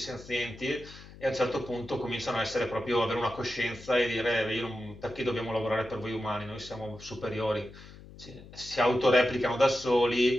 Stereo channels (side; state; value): left; noise; hum, 18 dB below the sound